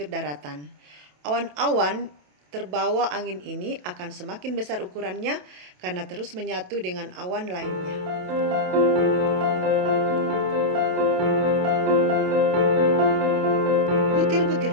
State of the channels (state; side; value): late; left; 27 ms